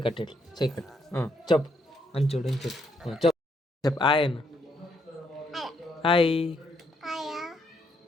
ఇట్లా సైకట్ చెప్పు అని చూడు అని చెప్పు చెప్పు చెప్పు. ఆయన హాయ్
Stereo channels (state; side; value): normal; both; correlation 0.74